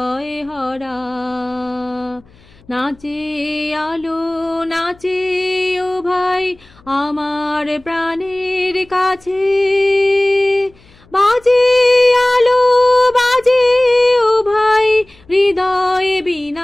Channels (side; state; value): left; noise; hum, 28 dB below the sound